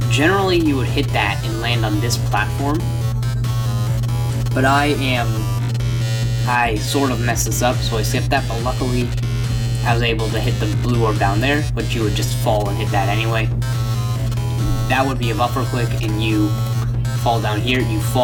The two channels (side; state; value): both; identical; correlation 1.00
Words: Generally you would hit that and land on this platform, but I sort of messed this up, so I skipped that, but luckily I was able to hit the blue orb down there, but you would just fall and hit that anyway. That would be a buffer click, and you fall down here, you